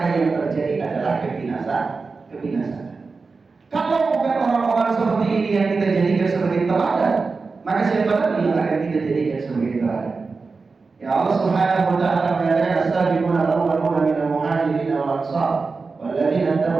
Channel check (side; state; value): left; quieter; 4.3 dB